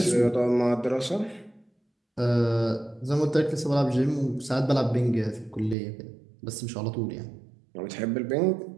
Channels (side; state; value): left; drops out; at 5.8 s